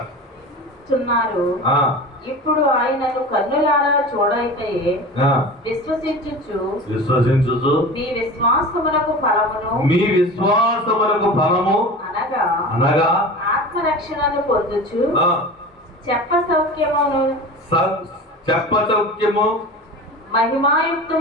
ఇప్పుడు ఆయనను కన్నులారా చూడైతే విశ్వసించుచు మీ విశ్వాసమునకు ఫలమును అనగా ఆత్మరక్షణను పొందుచు చెప్ప సౌఖ్యము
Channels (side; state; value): both; normal; correlation 0.33